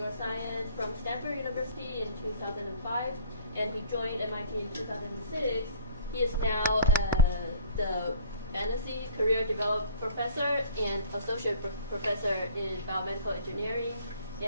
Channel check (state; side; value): inverted; both; correlation -0.49